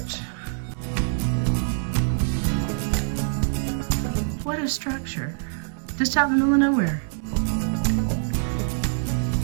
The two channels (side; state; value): left; silent; digital silence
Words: What a structure. Just out in the middle of nowhere.